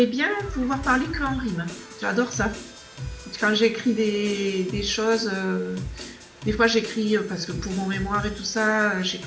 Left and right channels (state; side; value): identical; both; correlation 1.00